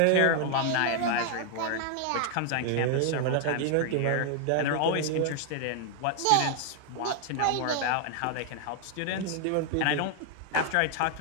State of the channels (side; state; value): both; different; correlation 0.00